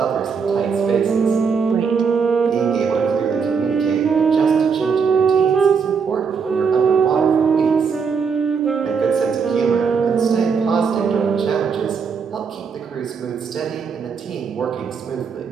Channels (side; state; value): left; quieter; 5.9 dB